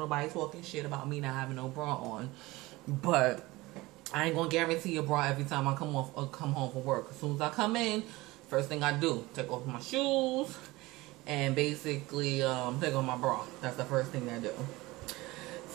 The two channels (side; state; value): left; quieter; 20.6 dB